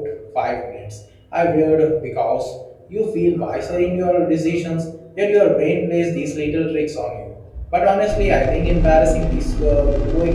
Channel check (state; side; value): identical; both; correlation 1.00